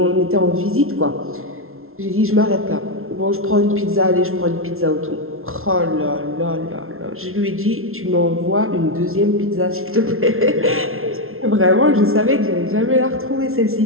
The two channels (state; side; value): late; left; 0.62 ms